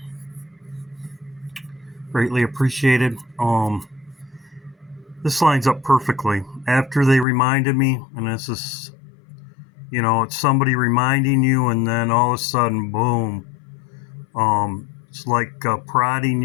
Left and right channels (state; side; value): drops out; right; at 7.2 s